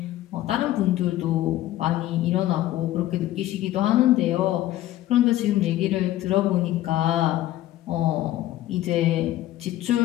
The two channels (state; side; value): quieter; right; 14.4 dB